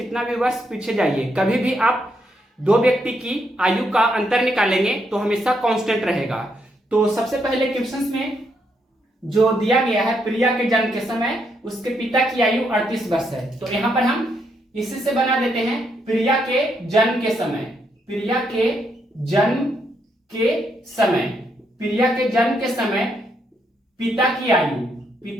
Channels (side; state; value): both; normal; correlation 0.77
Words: भी वर्ष पीछे जाइए, कभी भी आप दो व्यक्ति की आयु का अंतर निकालेंगे तो हमेशा कांस्टेंट रहेगा। तो सबसे पहले क्वेश्चंस में जो दिया गया है प्रिया के जन्म के समय उसके पिता की आयु 38 वर्ष है। तो यहां पर हम इसी से बना देते हैं प्रिया के जन्म के समय। प्रिया के जन्म के समय, प्रिया के जन्म के समय पिता की